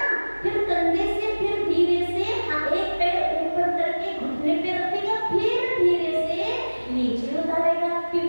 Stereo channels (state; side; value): inverted; both; correlation -1.00